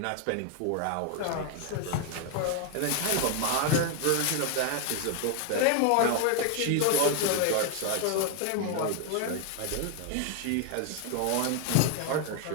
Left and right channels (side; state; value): both; different; correlation 0.01